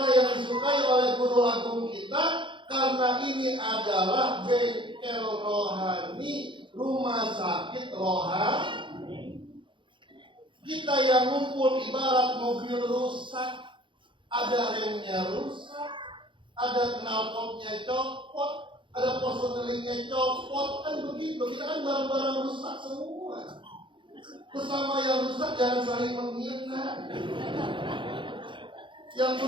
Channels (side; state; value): left; late; 0.24 ms